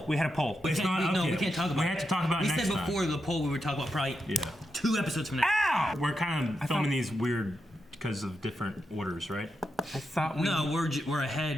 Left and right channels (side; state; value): both; normal; correlation 0.86